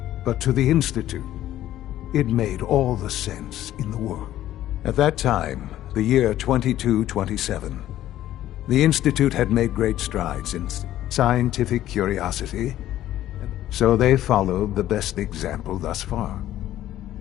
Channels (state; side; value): quieter; right; 13.2 dB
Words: But to the Institute, it made all the sense in the world. At that time, the year 2227, the Institute had made great strides in scientific curiosity, so they followed the best example thus far.